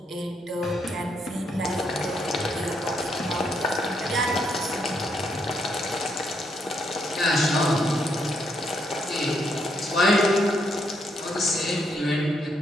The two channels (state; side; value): normal; both; correlation 0.76